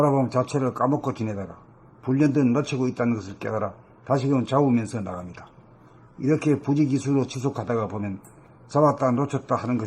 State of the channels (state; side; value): identical; both; correlation 1.00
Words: 자체를 까먹고 지내다가 불현듯 놓치고 있다는 것을 깨달아 다시금 잡으면서 나갑니다. 이렇게 부지기수로 지속하다가 보면 잡았다 놓쳤다 하는